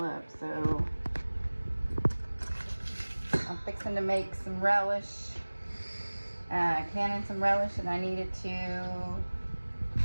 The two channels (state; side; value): inverted; both; correlation -1.00